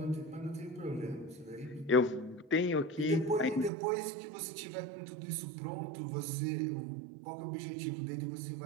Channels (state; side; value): drops out; left; at 3.7 s